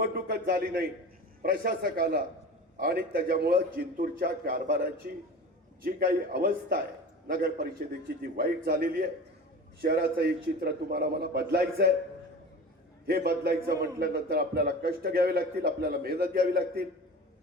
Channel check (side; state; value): both; normal; correlation 0.35